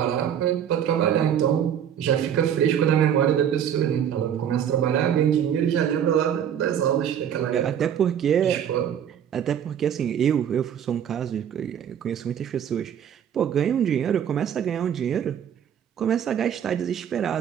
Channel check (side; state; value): left; quieter; 9.2 dB